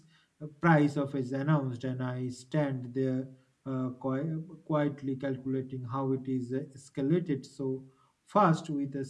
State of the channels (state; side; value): identical; both; correlation 1.00